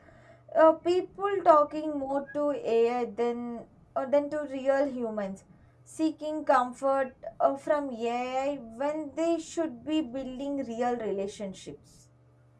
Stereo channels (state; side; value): identical; both; correlation 1.00